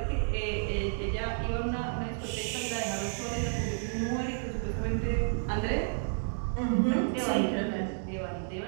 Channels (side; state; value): left; silent; digital silence